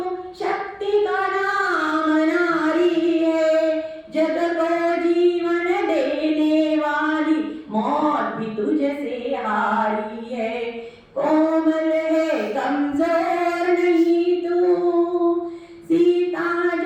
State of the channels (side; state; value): both; identical; correlation 1.00